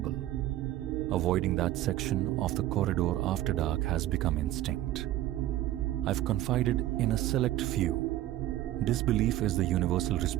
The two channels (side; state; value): left; quieter; 14.2 dB